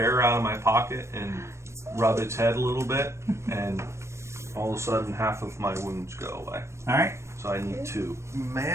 out of my pocket and rub its head a little bit, and all of a sudden half of my wounds go away. All right. So I need 2.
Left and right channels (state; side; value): late; left; 0.13 ms